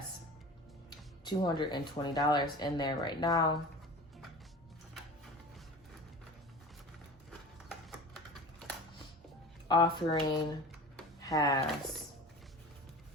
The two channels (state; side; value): normal; both; correlation 0.36